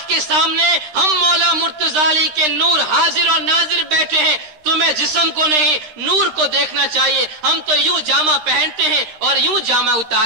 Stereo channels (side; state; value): left; late; 13 ms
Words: کے سامنے ہم مولا مرتضی علی کے نور حاضر اور ناظر بیٹھے ہیں، تمہیں جسم کو نہیں نور کو دیکھنا چاہیے۔ ہم تو یوں جامہ پہنتے ہیں اور یوں جامہ